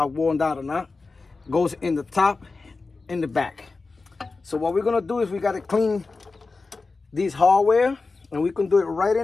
worn down or not. Goes in the top, in the back. So what we're gonna do is we gotta clean these hardware, and we can do it right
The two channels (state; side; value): quieter; right; 3.9 dB